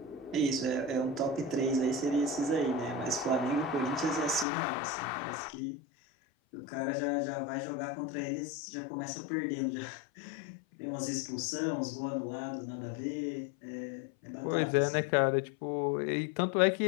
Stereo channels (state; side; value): drops out; right; at 4.5 s